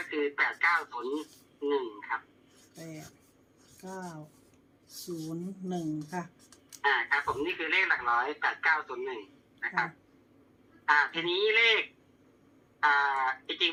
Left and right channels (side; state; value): both; identical; correlation 1.00